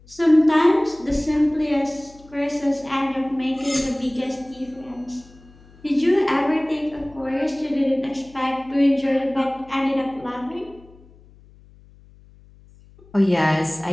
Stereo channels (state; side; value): noise; left; hum, 25 dB below the sound